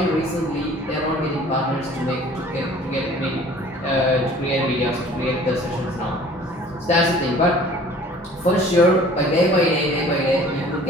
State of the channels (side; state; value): both; normal; correlation 0.50